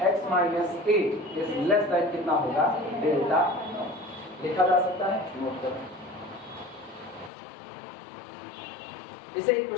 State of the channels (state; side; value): drops out; right; at 7.3 s